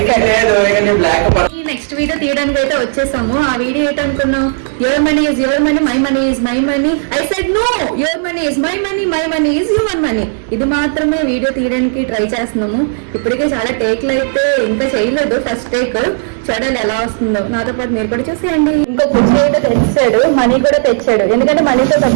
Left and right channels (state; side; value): silent; left; digital silence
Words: నెక్స్ట్ వీడియో తీయడానికి అయితే వచ్చేసాము. ఆ వీడియో ఏంటనుకున్నాం, your money is your money, my money is my money. I said no, your money is my money, my money is your money. ఇది మాత్రమే వీడియో తీయడానికి ట్రై చేస్తున్నాము. ఇప్పటికే చాలా టేక్లు అయితే ఇంకా చేయలేదు, ఫస్ట్ టేక్. చూడాలి ఎలా వస్తుందో. నాతో పాటు మీరు కూడా చూసేయండి. ఇంకో కుర్చీ అయితే తెచ్చాడు, మనీ కూడా తెచ్చాడు. ఎందుకంటే మనీతో